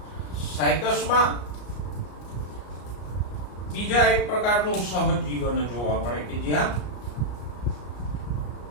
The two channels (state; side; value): late; right; 33 ms